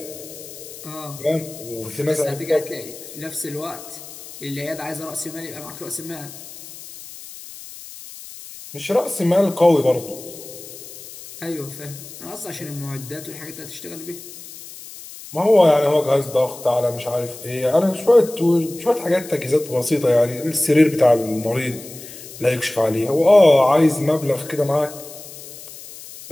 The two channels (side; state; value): left; noise; hiss, 15 dB below the sound